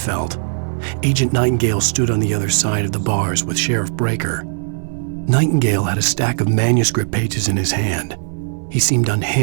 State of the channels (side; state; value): left; silent; digital silence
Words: Agent Nightingale stood on the other side of the bars with Sheriff Breaker. Nightingale had a stack of manuscript pages in his hand. He seemed